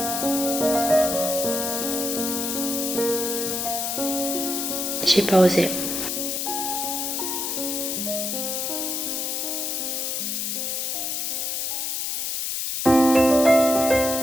J'ai pas osé.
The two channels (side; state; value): left; noise; hiss, 1 dB below the sound